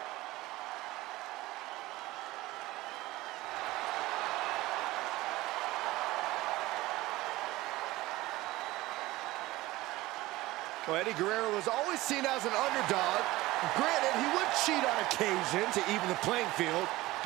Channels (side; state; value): left; quieter; 18.6 dB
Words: Well, Eddie Guerrero was always seen as an underdog. Granted, he would cheat on occasion to even the playing field.